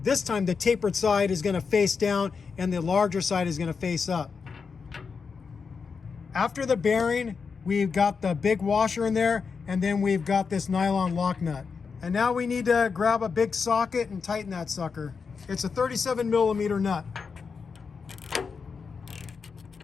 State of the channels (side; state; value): right; quieter; 5.4 dB